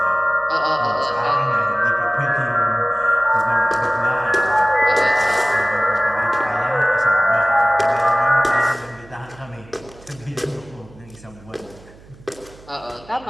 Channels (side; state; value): right; noise; hum, 23 dB below the sound